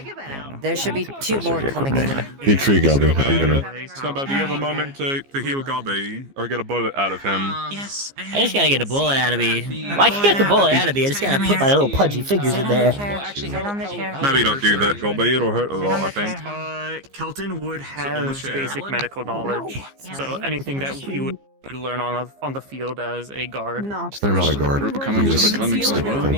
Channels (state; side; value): late; left; 15 ms